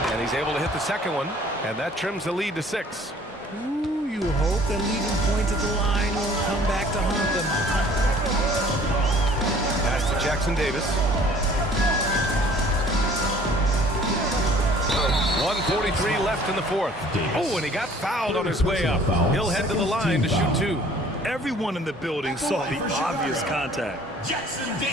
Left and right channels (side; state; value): both; normal; correlation 0.53